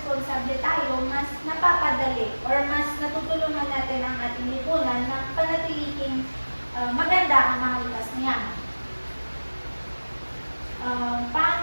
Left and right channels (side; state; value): both; inverted; correlation -1.00